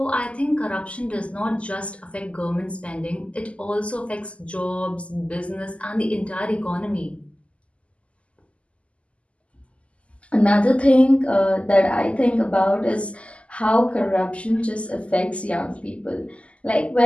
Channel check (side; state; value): right; late; 0.059 ms